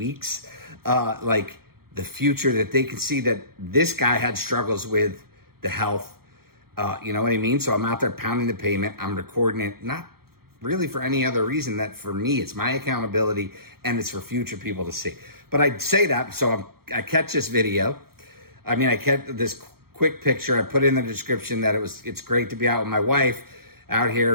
like the future, that they can see that this guy had struggles with the health. You know what I mean? So I'm out there pounding the pavement. I'm recording it, not really for any other reason that for me, it's my accountability and it's for future people to see. But I say that, so I catch this video. I kept this quick picture. I put in the description that it's great to be out with my wife out here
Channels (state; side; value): late; left; 0.94 ms